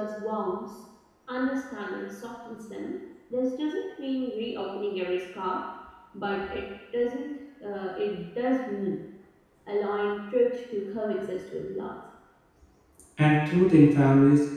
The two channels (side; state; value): both; identical; correlation 1.00